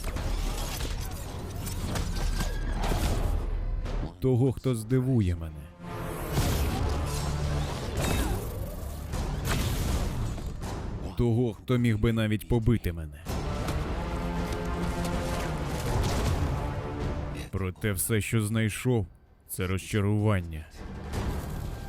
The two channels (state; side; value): identical; both; correlation 1.00